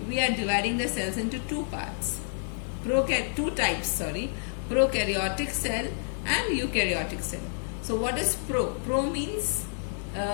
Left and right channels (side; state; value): right; silent; digital silence